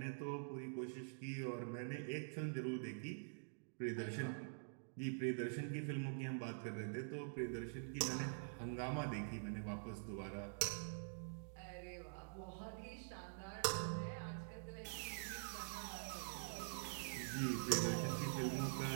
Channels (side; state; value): left; silent; digital silence